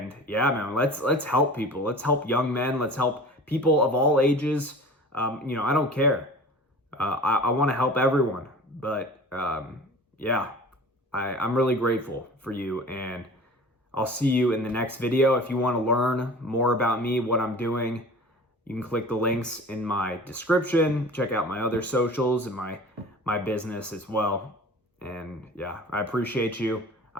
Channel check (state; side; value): normal; both; correlation 0.41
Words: yeah, man, let's help people. Let's help young men. Let's help people of all ages. I don't care. I want to help everyone, but I'm really grateful for you, and I'll see you in the next video. If you want to learn more about me, what I'm doing, you can click the links in my description. Check out my other socials and my business as well. And yeah, I appreciate you.